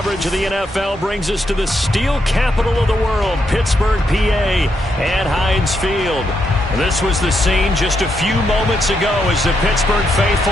of the NFL brings us to the steel capital of the world, Pittsburgh, PA, at Heinz Field. This was the scene just a few moments ago as the Pittsburgh faithful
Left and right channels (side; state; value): both; normal; correlation 0.80